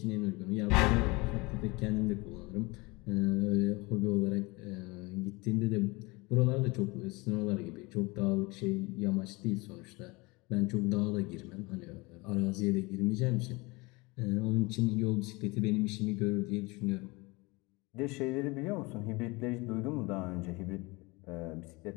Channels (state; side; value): quieter; right; 24.8 dB